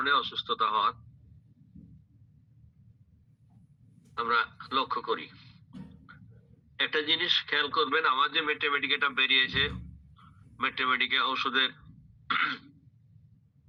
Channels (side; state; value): both; identical; correlation 1.00